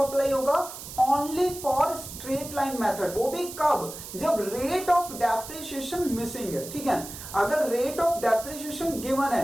होगा? Only for straight line method. वो भी कब? जब रेट ऑफ डेप्रिसिएशन मिसिंग है, ठीक है। अगर रेट ऑफ डेप्रिसिएशन गिवन है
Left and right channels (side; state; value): right; noise; hiss, 12 dB below the sound